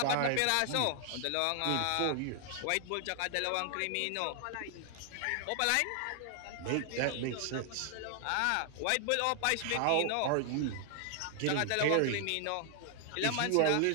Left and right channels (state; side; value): different; both; correlation 0.00